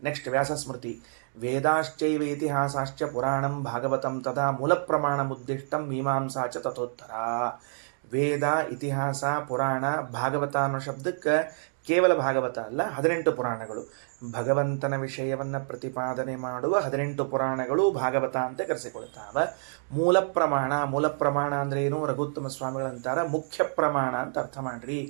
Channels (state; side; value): silent; left; digital silence